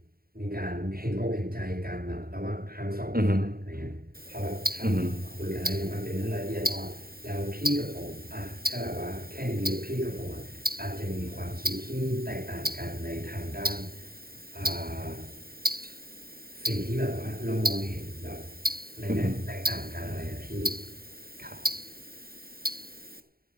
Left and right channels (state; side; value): late; left; 0.43 ms